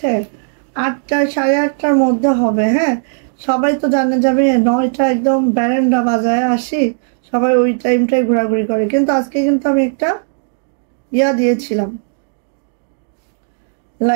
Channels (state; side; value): silent; left; digital silence